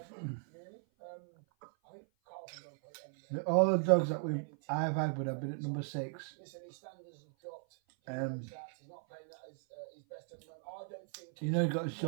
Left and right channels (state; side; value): silent; left; 53 dB below the other